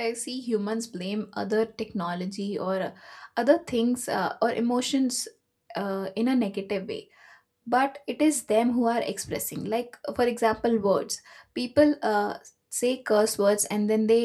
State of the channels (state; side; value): identical; both; correlation 1.00